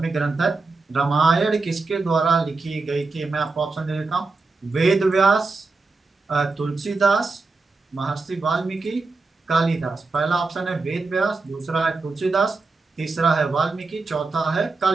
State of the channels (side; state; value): left; quieter; 3.8 dB